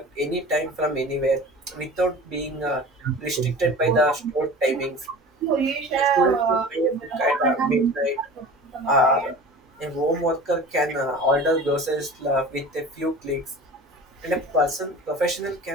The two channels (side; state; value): both; normal; correlation 0.38